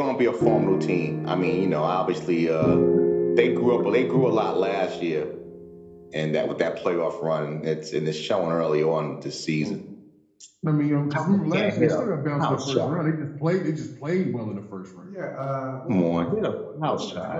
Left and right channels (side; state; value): both; identical; correlation 1.00